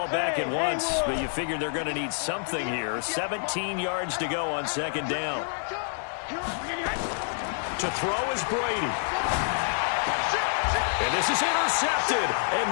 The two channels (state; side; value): silent; right; digital silence